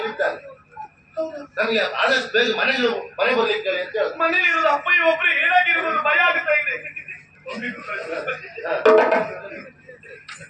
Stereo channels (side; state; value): both; identical; correlation 1.00